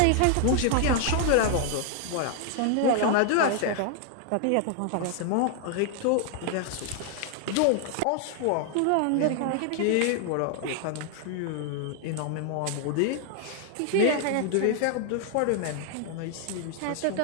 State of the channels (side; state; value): both; different; correlation 0.00